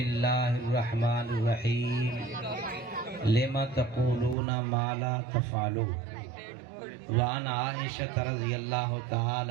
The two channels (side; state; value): left; drops out; at 4.4 s